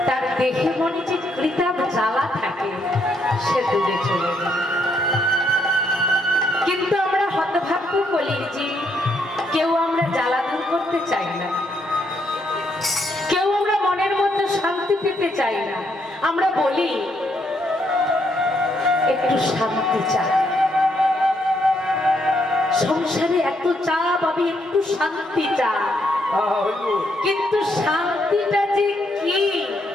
তার দেহে মনে যে কৃতাপ জ্বালা থাকে সে দূরে চলে যায়। কিন্তু আমরা হতভাগ্য কলির জীব, কেউ আমরা জ্বালা দূর করতে চাই না, কেউ আমরা মনের মধ্যে শান্তি পেতে চাই না। আমরা বলি একটু শান্তি চাই, সংসারে এত চাপ, আমি একটু শান্তি চাই, কিন্তু শান্তিটা যে কি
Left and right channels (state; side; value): normal; both; correlation 0.74